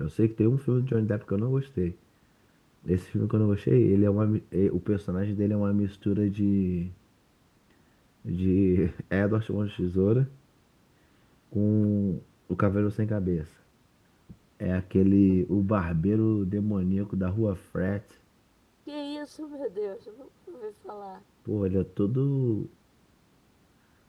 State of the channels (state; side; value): identical; both; correlation 1.00